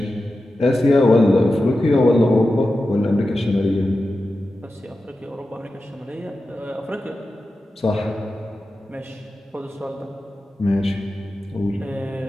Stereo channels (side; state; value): both; normal; correlation 0.92